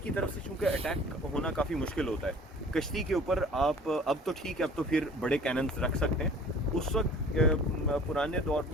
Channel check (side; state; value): both; normal; correlation 0.48